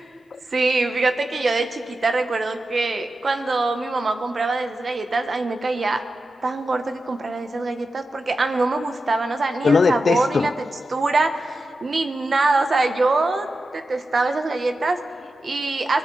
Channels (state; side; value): normal; both; correlation 0.91